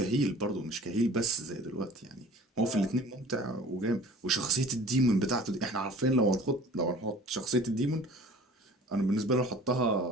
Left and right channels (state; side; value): normal; both; correlation 0.46